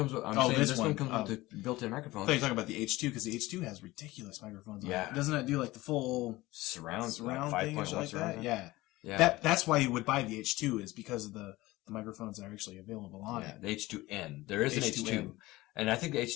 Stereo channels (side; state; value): right; quieter; 19.1 dB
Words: with. This one comes with the built-in microphone. I thought you were talking about the H2 because the H2 has ridiculous microphones. Yeah, doesn't it do the full surround thing or like that? Yeah. Yeah. That's why you would buy the H2 is because of the microphones that are actually available on it. The H2N. There is an H2, and I think the